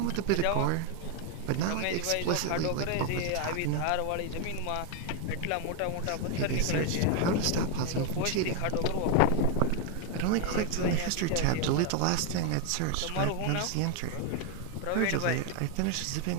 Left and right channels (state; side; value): different; both; correlation 0.01